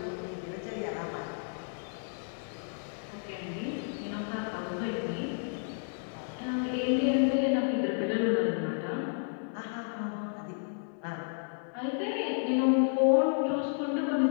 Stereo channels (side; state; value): right; silent; 57 dB below the other